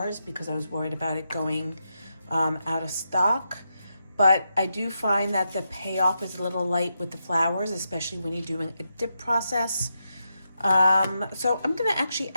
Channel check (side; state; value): both; inverted; correlation -0.85